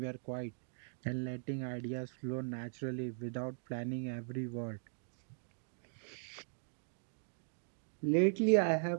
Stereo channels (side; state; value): left; silent; digital silence